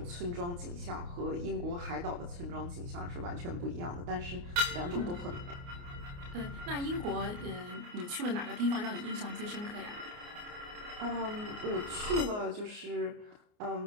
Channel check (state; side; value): late; left; 29 ms